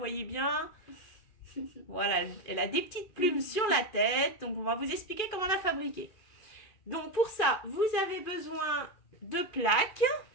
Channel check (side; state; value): right; late; 2.5 ms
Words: bien. Voilà, elle a des petites plumes sur la tête, donc on va vous expliquer comment la fabriquer. Donc pour ça, vous avez besoin de plaques